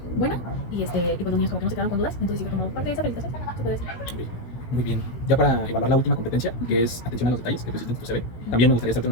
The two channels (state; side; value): late; right; 16 ms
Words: buena y pues los niños como que no se quedaron con dudas, entonces sí fue como parte de esa felicitación, se puede decir. ok. Muy bien. Ya para evaluar la última competencia, que es atención a los detalles, que pusiste en tu CV, también me gustaría hacerte